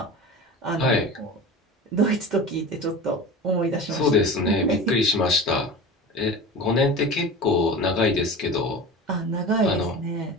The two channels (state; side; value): normal; both; correlation 0.33